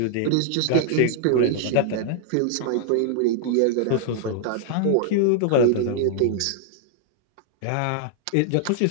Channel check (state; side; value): different; both; correlation -0.01